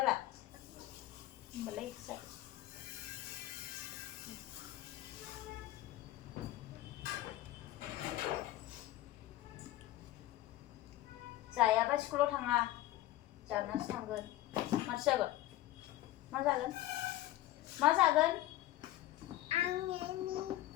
होमबालाय जाबाय जायाबा स्कुलाव थाङा जानासो थांगोन माथो जागोन मा जागोन मा जागोन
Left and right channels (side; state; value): right; quieter; 15.3 dB